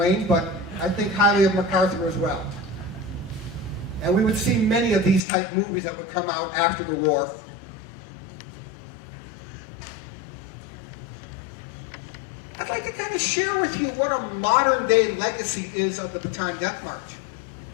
but I think highly of MacArthur as well. And we would see many of these type movies that would come out after the war. I'd like to kind of share with you what a modern-day legacy is of the Bataan Death March.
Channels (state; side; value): drops out; right; at 5.2 s